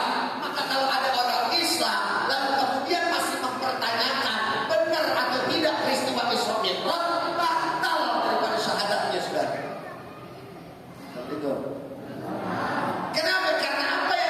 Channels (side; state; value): both; identical; correlation 1.00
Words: Maka kalau ada orang Islam lalu kemudian masih mempertanyakan benar atau tidak peristiwa Isra Mi'raj, batal daripada syahadatnya sudah. Betul. Kenapa? Karena apa